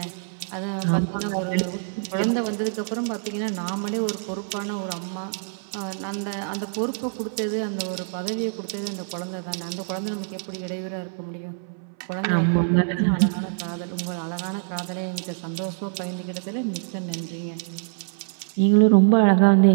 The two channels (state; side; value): silent; left; 59 dB below the other